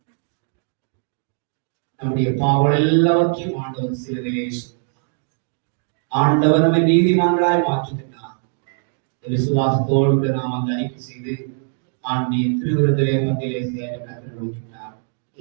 நம்முடைய பாவம் எல்லாவற்றையும் ஆண்டவர் சிலுவையிலே ஆண்டவர் நம்மை நீதிமான்களாய் மாற்றுகிறார். விசுவாசத்தோடு நாம் அந்த அறிக்கை செய்து ஆண்டிய திருவிருந்திலே பந்திலே சேர கற்றுக் கொடுக்கிறார்.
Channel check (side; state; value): left; silent; digital silence